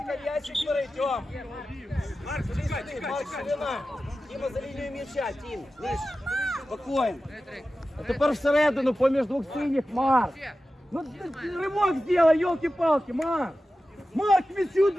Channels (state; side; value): normal; both; correlation 0.94